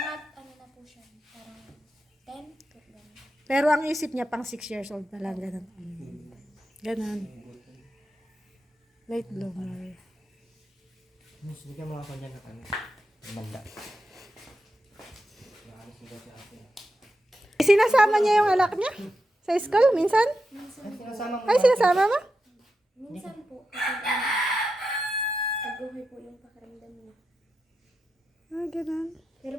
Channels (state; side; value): normal; both; correlation 0.89